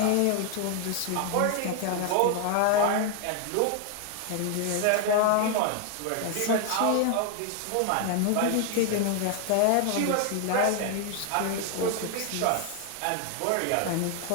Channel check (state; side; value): different; both; correlation 0.00